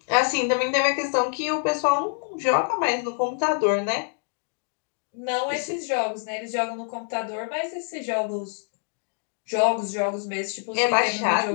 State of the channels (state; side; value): silent; right; 59 dB below the other